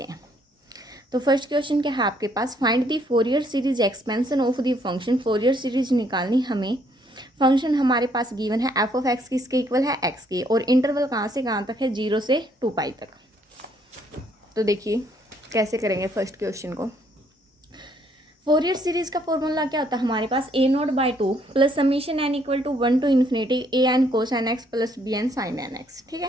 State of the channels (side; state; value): both; normal; correlation 0.68